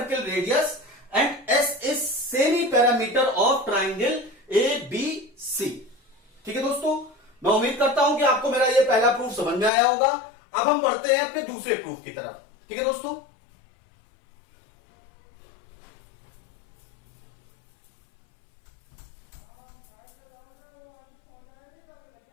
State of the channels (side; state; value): right; drops out; at 9.7 s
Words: radius and S is semi parameter of triangle A B C. ठीक है दोस्तों, मैं उम्मीद करता हूं कि आपको मेरा ये पहला प्रूफ समझ में आया होगा। अब हम बढ़ते हैं अपने दूसरे प्रूफ की तरफ। ठीक है दोस्तों,